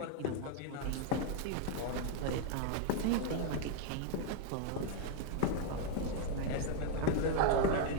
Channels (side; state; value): both; different; correlation 0.00